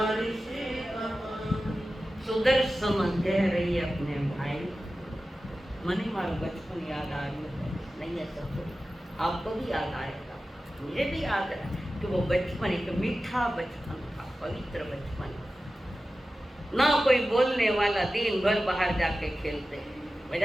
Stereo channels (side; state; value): both; normal; correlation 0.94